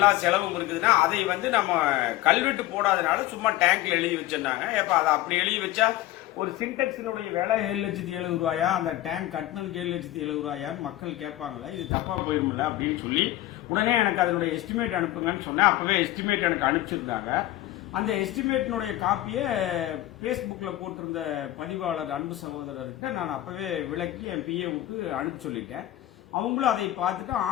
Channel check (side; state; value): right; quieter; 15.3 dB